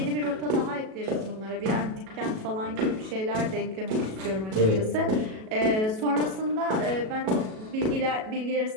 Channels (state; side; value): late; left; 37 ms